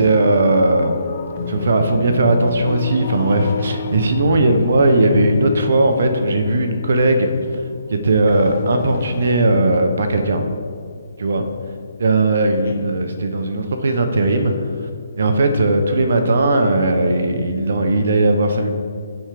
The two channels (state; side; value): inverted; both; correlation -0.75